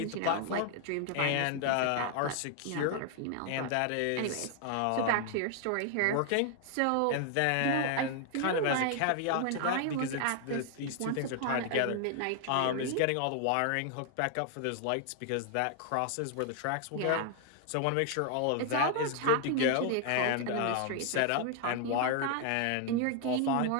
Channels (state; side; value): different; both; correlation 0.00